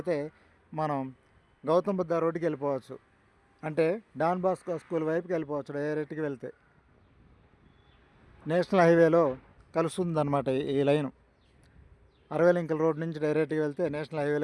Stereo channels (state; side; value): identical; both; correlation 1.00